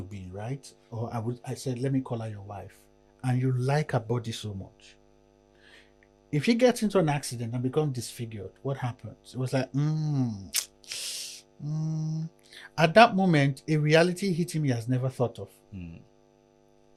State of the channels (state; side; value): identical; both; correlation 1.00